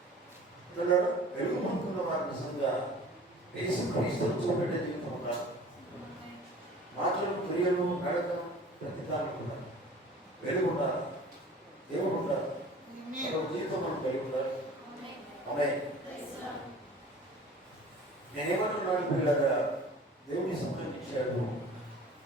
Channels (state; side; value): normal; both; correlation 0.45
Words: వెలుగు పొందుతున్న వారి నిజంగా యేసుక్రీస్తును చూపెట్టే జీవితం ఉండాలి. మాటలు, క్రియలు, నడకలు, ప్రతిదానం ఉండాలి. వెలుగు ఉండాలి, దేవుడు ఉండాలి, జీవితం మనం కలిగి ఉండాలి. ఆమేన్. నేనేమన్నాను పిల్లగా, దేవుని సమయం ఇచ్చాడు.